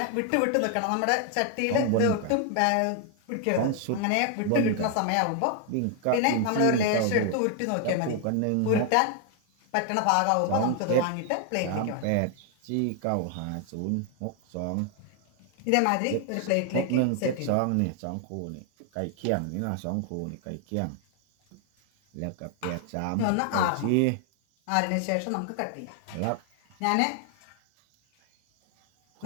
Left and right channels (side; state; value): both; different; correlation 0.00